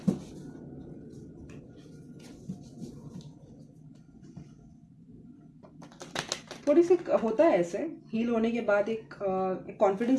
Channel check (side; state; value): both; identical; correlation 1.00